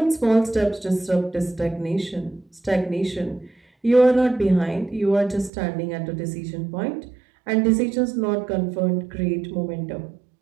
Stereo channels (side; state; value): left; drops out; at 5.5 s